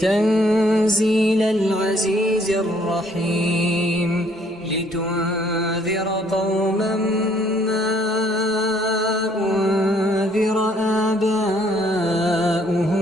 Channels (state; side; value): normal; both; correlation 0.64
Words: تنزيل العزيز الرحيم لتنذر قوما ما أنذر